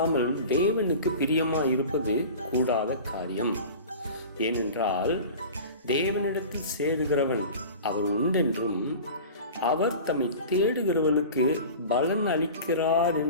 தேவனுக்கு பிரியமாக இருப்பது கூடாத காரியம். ஏனென்றால் தேவனிடத்தில் சேருகிறவன் அவர் உண்டென்றும் அவர் தம்மை தேடுகிறவனுக்கு பலன் அளிக்கிறார்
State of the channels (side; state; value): both; inverted; correlation -0.37